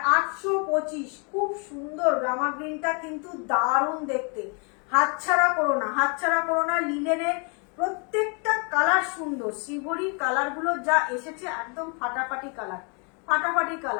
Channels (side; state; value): right; quieter; 36.0 dB